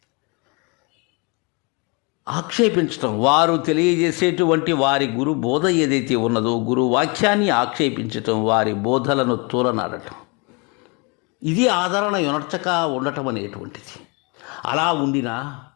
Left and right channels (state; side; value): quieter; right; 30.8 dB